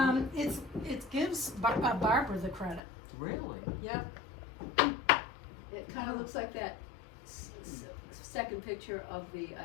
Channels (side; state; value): right; drops out; at 2.8 s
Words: It gives Barbara the credit. Really? Yep. It kind of looks like that second picture of the